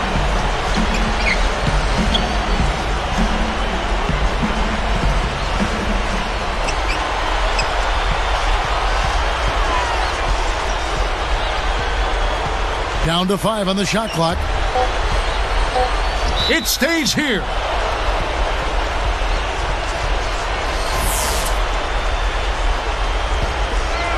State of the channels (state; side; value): identical; both; correlation 1.00